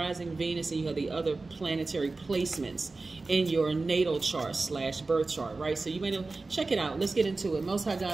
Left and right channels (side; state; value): left; quieter; 3.6 dB